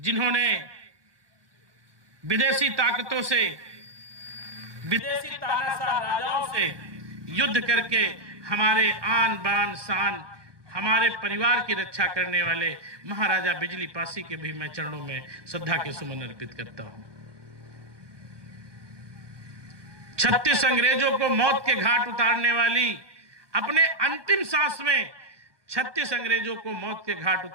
विदेशी ताकतों से, विदेशी तानाशाह राजाओं से युद्ध करके हमारे आन बान शान, हमारे परिवार की रक्षा करने वाले महाराजा बिजली पासी के भी मैं चरणों में श्रद्धा के सुमन अर्पित करता हूं। 36 अंग्रेजों को मौत के घाट उतारने वाली, अपने अंतिम सांस में 36 अंग्रेजों को मौत के घाट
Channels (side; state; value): left; late; 1.2 ms